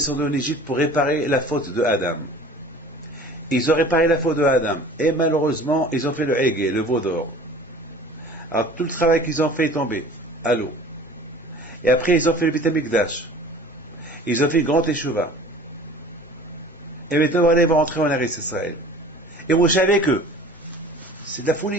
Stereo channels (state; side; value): normal; both; correlation 0.44